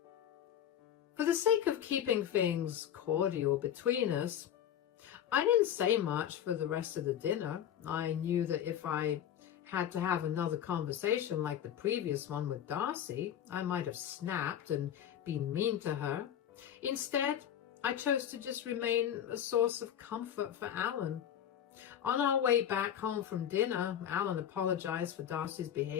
For the sake of keeping things cordial between us, I didn't say much for the rest of the dinner. I knew that if I had to have another conversation like the previous one with Darcy, I might have snapped and been mean to her. Instead, I chose to just remain a source of comfort for Alan. On our way back home from dinner, Alan apologized for Darcy's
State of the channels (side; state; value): right; quieter; 10.0 dB